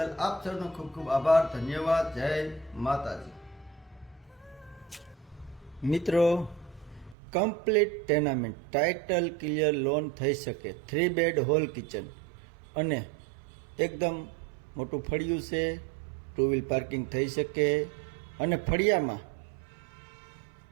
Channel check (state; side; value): drops out; left; at 7.2 s